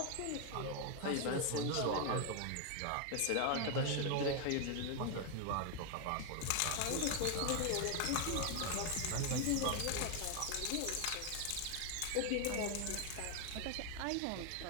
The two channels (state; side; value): different; both; correlation 0.01